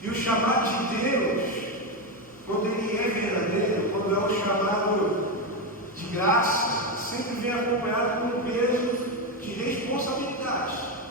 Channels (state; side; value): normal; both; correlation 0.10